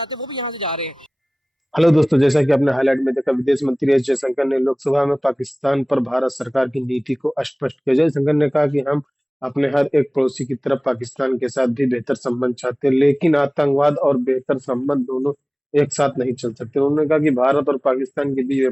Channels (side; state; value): both; normal; correlation 0.98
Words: हैं वो भी यहाँ से जा रहे हैं। हेलो दोस्तों, जैसा कि आपने हाईलाइट में देखा, विदेश मंत्री एस जयशंकर ने लोकसभा में पाकिस्तान पर भारत सरकार की नीति को स्पष्ट किया। जयशंकर ने कहा कि हम अपने हर एक पड़ोसी की तरफ पाकिस्तान के साथ भी बेहतर संबंध चाहते हैं, लेकिन आतंकवाद और बेहतर संबंध दोनों एक साथ नहीं चल सकते। उन्होंने कहा कि भारत और पाकिस्तान के बीच